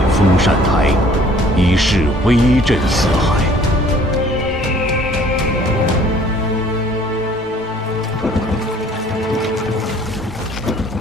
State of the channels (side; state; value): both; normal; correlation 0.55